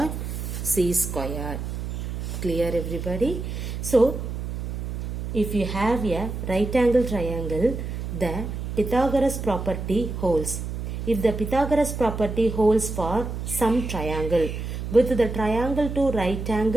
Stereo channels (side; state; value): right; noise; hum, 5 dB below the sound